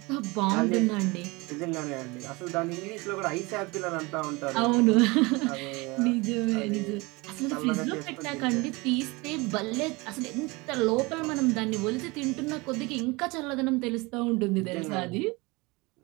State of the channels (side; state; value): left; quieter; 24.8 dB